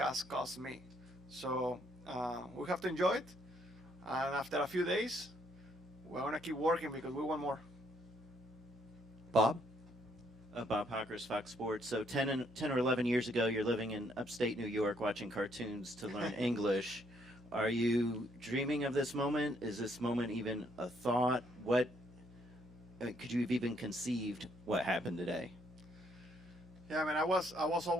cost me. So we have to enjoy it, and after a few days, we're gonna keep working because we want more. Bob? Bob Hockers, Fox Sports. So 10 or 11 years ago, you're living in upstate New York watching cartoons to learn English. Are you dreaming of this moment? Is this moment even a thought? What could you have even conceived what happened today? Yeah, I mean, I was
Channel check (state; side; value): noise; left; hum, 21 dB below the sound